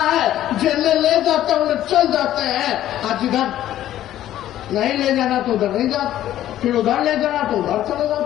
है। जेल ले जाते हैं उन्हें चल जाते हैं, आज इधर नहीं ले जाना तो उधर नहीं जाते, फिर उधर ले जाना तो उधर चले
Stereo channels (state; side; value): quieter; right; 12.7 dB